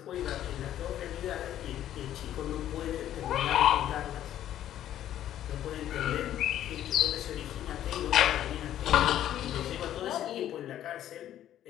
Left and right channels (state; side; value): quieter; right; 11.7 dB